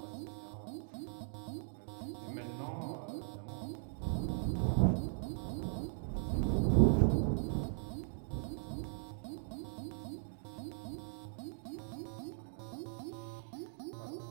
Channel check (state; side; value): silent; left; digital silence